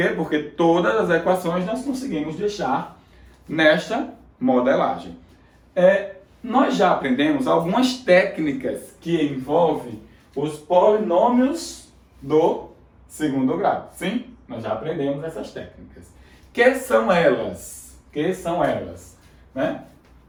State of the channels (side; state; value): both; identical; correlation 1.00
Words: Porque todas as equações nós conseguimos deixar nesta modelagem. Nós já aprendemos algumas técnicas que envolvem os polinômios do segundo grau. Sim, nós já aprendemos essas técnicas. Que são elas? Né?